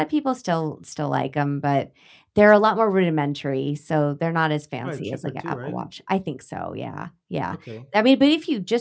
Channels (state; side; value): identical; both; correlation 1.00